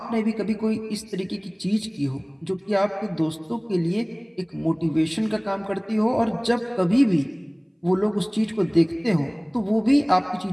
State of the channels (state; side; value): identical; both; correlation 1.00